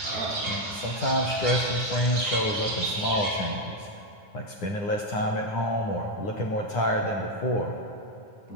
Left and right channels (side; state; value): right; late; 9.8 ms